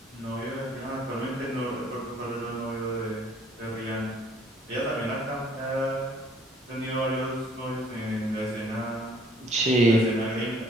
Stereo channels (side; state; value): both; normal; correlation 0.60